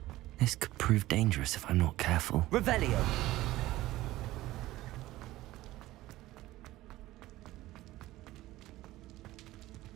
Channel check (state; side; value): quieter; left; 16.8 dB